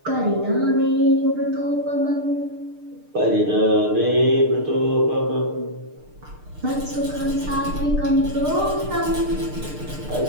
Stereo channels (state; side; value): late; left; 6.6 ms